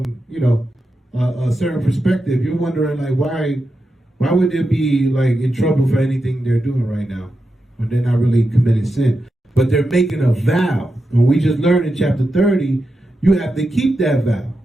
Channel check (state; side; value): normal; both; correlation 0.88